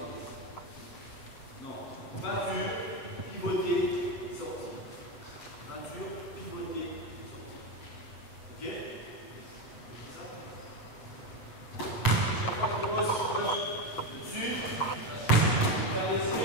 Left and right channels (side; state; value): right; late; 7.6 ms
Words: Non. Peinture, pivoter, sortir. Peinture, pivoter, sortir. Ok? C'est ça? Chaque fois qu'on pose dessus, faire les